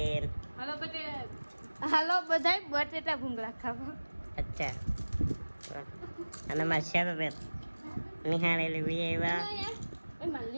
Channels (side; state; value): both; inverted; correlation -1.00